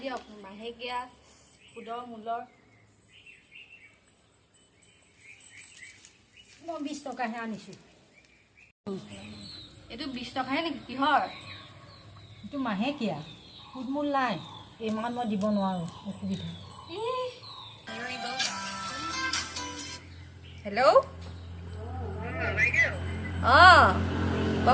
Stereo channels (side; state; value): both; identical; correlation 1.00